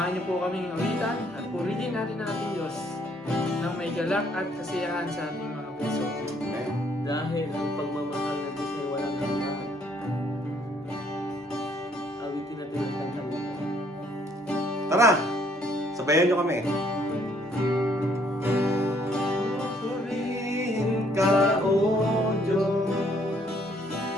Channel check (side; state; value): both; normal; correlation 0.66